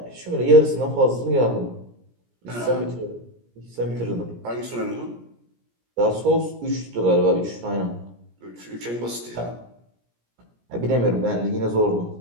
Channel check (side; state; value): left; late; 17 ms